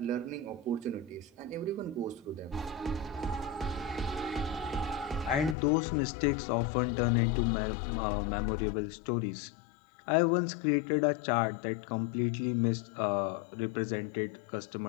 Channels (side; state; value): right; drops out; at 5.6 s